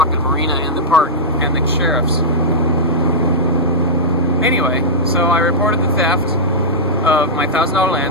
marina and the park and the sheriffs. Anyway, so I reported the theft of my $1,000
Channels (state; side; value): normal; both; correlation -0.11